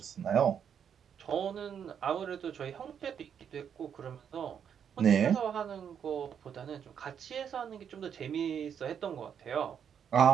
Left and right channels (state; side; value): quieter; left; 8.0 dB